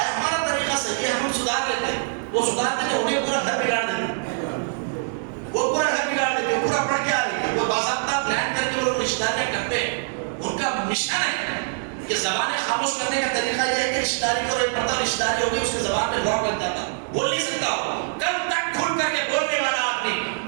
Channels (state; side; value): silent; left; 63 dB below the other